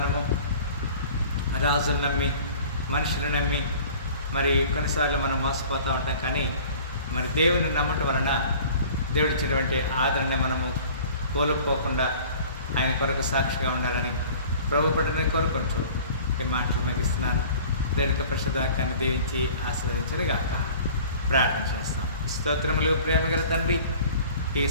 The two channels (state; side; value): inverted; both; correlation -0.46